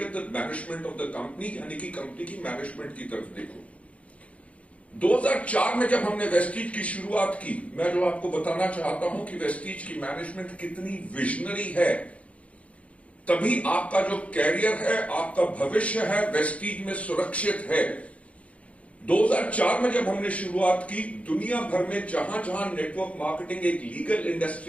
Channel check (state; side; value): late; right; 0.064 ms